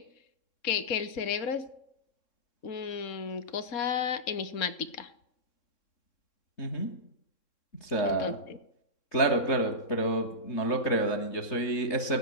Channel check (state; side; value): late; right; 3.6 ms